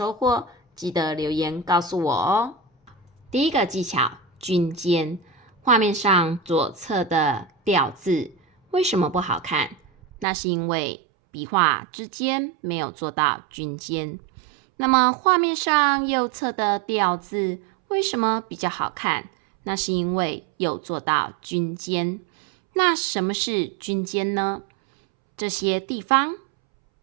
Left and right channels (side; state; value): left; drops out; at 10.2 s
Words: 获，记得留言告诉我哦。第一个技巧，均间。画面上左侧的吊字为什么不好看？那是因为笔画之间没有做到均间。那么画面上右侧的吊字为什么比较好看？那是因为有做到均间。那什么是均间呢？这些地方，